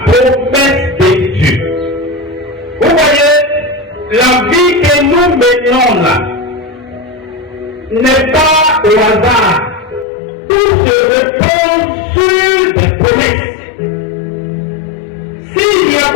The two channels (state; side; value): drops out; right; at 10.1 s